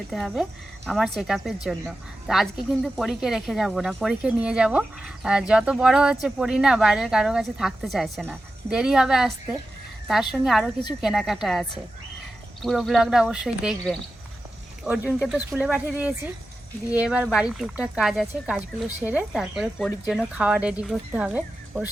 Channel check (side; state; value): both; normal; correlation 0.92